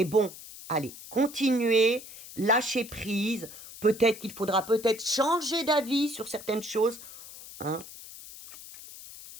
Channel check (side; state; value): left; noise; hiss, 15 dB below the sound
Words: bon, allez, continuez, lâchez prise. Peut-être qu'il faudra changer d'avis sur certaines choses. Hein.